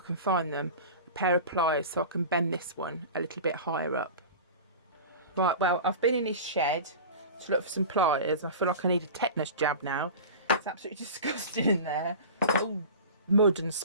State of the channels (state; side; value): inverted; both; correlation -0.34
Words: find them, a pair of pliers so I can bend this one a little bit higher up. Right, well, I've been in his shed to look for some pliers. I feel like I need a tetanus jab now. It's absolutely disgusting in there. All mud and